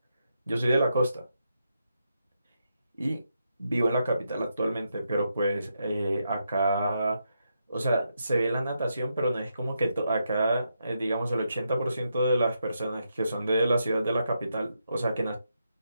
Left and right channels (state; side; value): inverted; both; correlation -0.82